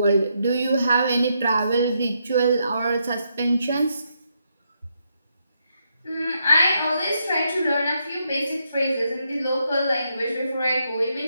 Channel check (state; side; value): inverted; both; correlation -0.79